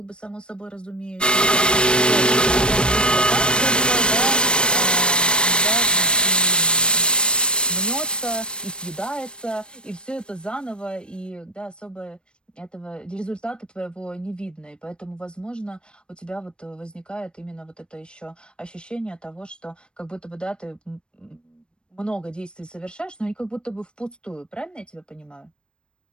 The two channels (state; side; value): late; right; 0.055 ms